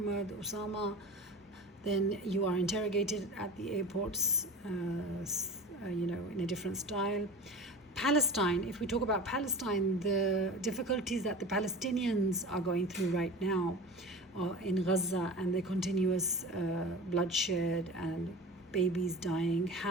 Osama, then you are interrogated at the airports, in a different style. Palestine, if we talk about Palestine, the difficulties that the Palestinians are going through right now in Gaza, and the continuous bloodshed and babies dying,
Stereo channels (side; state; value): both; normal; correlation 0.33